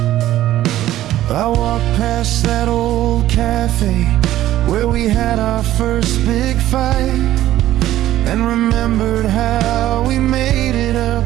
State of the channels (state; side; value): quieter; left; 13.8 dB